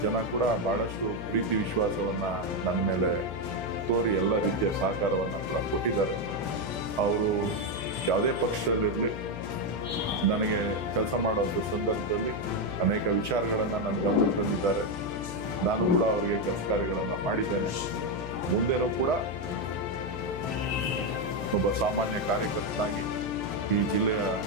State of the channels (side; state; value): left; noise; hum, 8 dB below the sound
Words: ಜನ ಕೂಡ ಬಹಳಷ್ಟು ಪ್ರೀತಿ ವಿಶ್ವಾಸವನ್ನ ನನ್ನ ಮೇಲೆ ತೋರಿ ಎಲ್ಲ ರೀತಿಯ ಸಹಕಾರವನ್ನ ಕೂಡ ಕೊಟ್ಟಿದ್ದಾರೆ. ಅವರು ಯಾವುದೇ ಪಕ್ಷದಲ್ಲಿರಲಿ ನನಗೆ ಕೆಲಸ ಮಾಡುವಂಥ ಸಂದರ್ಭದಲ್ಲಿ ಅನೇಕ ವಿಚಾರಗಳನ್ನ ನನ್ನ ಗಮನಕ್ಕೆ ತಂದಿದ್ದಾರೆ. ನಾನು ಕೂಡ ಅವರಿಗೆ ಕೆಲಸ ಕಾರ್ಯಗಳನ್ನ ಮಾಡಿದ್ದೇನೆ. ಮುಂದೆನೂ ಕೂಡ ಒಬ್ಬ ಸಾಮಾನ್ಯ ಕಾರ್ಯಕರ್ತನಾಗಿ ಈ ಜಿಲ್ಲೆಯ